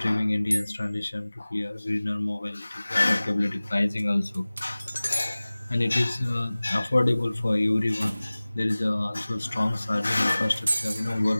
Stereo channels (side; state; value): both; inverted; correlation -0.99